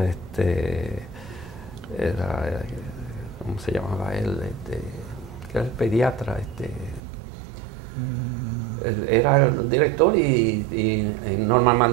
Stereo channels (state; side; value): drops out; left; at 7.0 s